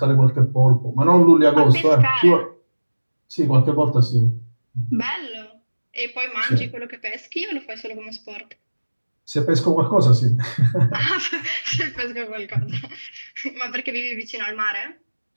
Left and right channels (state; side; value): inverted; both; correlation -1.00